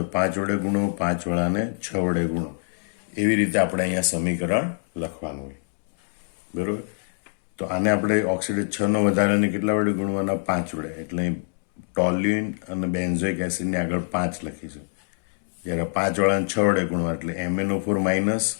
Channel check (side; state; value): right; silent; 62 dB below the other